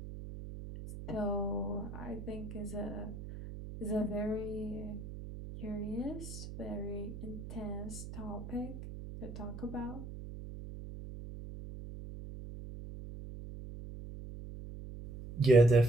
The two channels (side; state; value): right; noise; hum, 10 dB below the sound